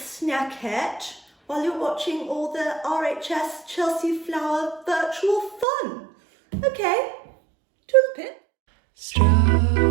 while you're watching all the RHS Chelsea Flower virtual fun. Okay, toodlepip.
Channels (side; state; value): left; drops out; at 5.7 s